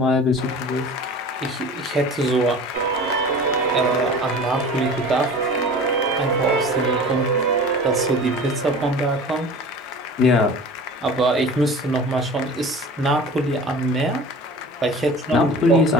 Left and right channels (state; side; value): normal; both; correlation 0.39